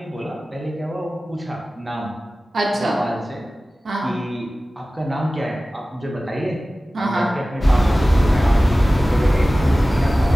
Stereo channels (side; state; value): both; normal; correlation 0.97